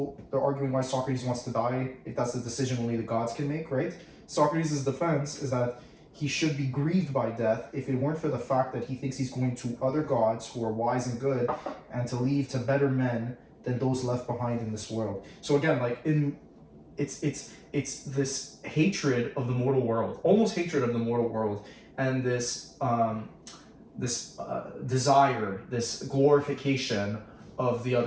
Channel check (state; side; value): identical; both; correlation 1.00